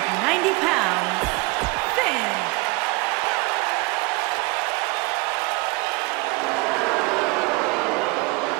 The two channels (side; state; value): left; quieter; 24.9 dB